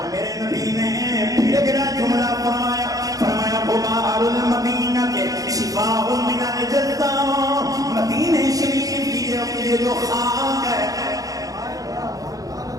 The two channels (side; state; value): left; late; 0.17 ms